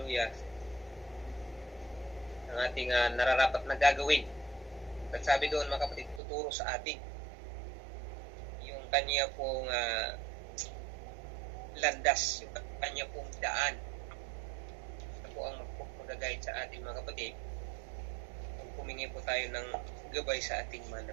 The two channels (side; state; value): left; drops out; at 6.2 s